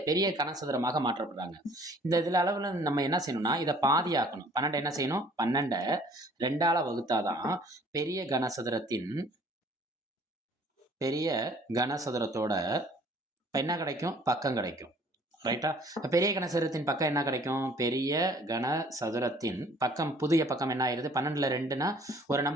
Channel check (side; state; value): both; normal; correlation 0.55